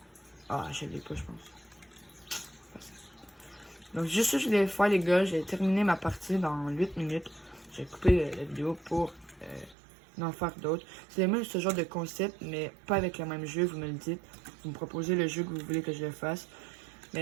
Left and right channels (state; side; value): drops out; left; at 9.8 s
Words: Ah, je l'ai pas, je pense. Donc, juste ça, je voulais faire, les gars. J'ai terminé ma partie dans 8 minutes. J'ai coupé la vidéo pour en faire d'autres. C'est même ce genre de concept, mais pas avec le même jeu, vous me le dites. Vous me proposez le jeu que vous voulez que je le fasse.